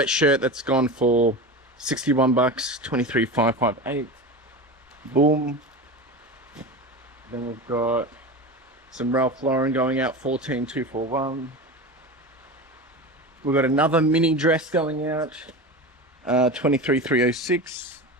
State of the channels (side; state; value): both; normal; correlation 0.27